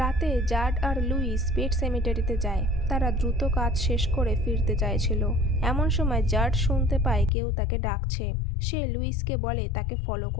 জার্ড আর লুইস পেট সেমিটারিতে যায়। তারা দ্রুত কাজ শেষ করে ফিরতে চাইছিল। এমন সময় জার্ড শুনতে পায় কেউ তাকে ডাকছে। সে লুইসকে বলে তাকে ফলো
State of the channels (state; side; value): drops out; right; at 7.3 s